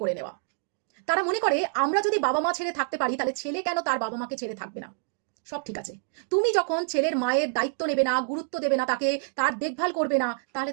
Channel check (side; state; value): left; silent; digital silence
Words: করে নেওয়া। তারা মনে করে আমরা যদি বাবা মা ছেড়ে থাকতে পারি তাহলে ছেলে কেন তার বাবা মাকে ছেড়ে থাকবে না। সব ঠিক আছে, তুমি যখন ছেলের মায়ের দায়িত্ব নেবে না, গুরুত্ব দেবে না, তাকে তার দেখভাল করবে না, তাহলে